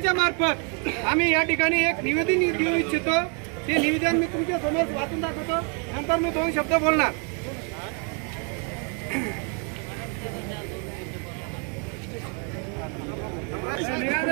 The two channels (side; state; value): left; quieter; 37.8 dB